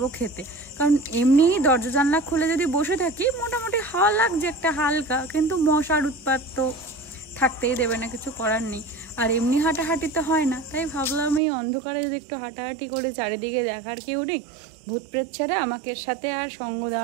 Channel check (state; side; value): drops out; left; at 11.4 s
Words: খেতে, কারণ এমনি দরজা জানলা খুলে যদি বসে থাকি মোটামুটি হাওয়া লাগছে একটা হালকা, কিন্তু মশার উৎপাত তো থাকতেই দেবে না, কিছু করার নেই। আর এমনি হাঁটাহাঁটি তো হয় না, তাই ভাবলাম এই অন্ধকারে যদি একটু হাঁটাহাঁটি করে, চারিদিকে দেখার কেউ নেই, ভূত প্রেত ছাড়া আমাকে সাথে আর সঙ্গ